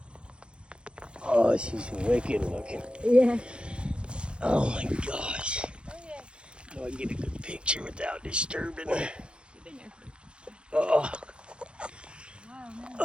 Oh, she's wicked looking. Yeah. Oh my gosh. Do I get a good picture without disturbing her? Oh,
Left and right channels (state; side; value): late; left; 0.057 ms